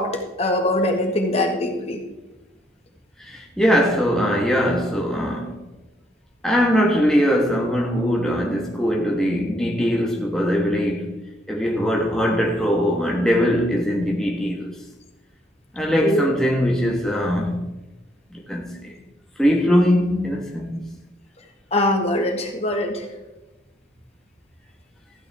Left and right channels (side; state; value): both; normal; correlation 0.71